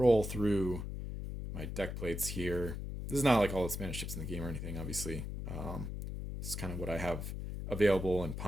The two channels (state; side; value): noise; left; hum, 5 dB below the sound